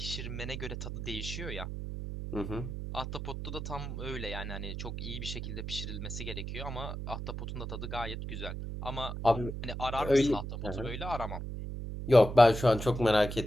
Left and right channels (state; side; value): noise; right; hum, 6 dB below the sound